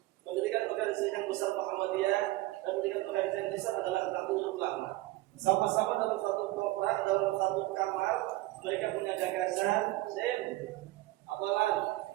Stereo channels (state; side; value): quieter; left; 18.8 dB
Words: Mendirikan organisasi yang besar Muhammadiyah dan mendirikan organisasi yang besar adalah Nahdlatul Ulama. Sama-sama dalam satu kontrak, dalam satu kamar, mereka punya gagasan. Apalan,